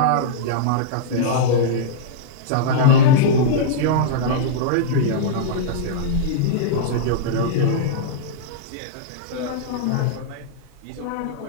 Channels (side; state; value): both; different; correlation -0.03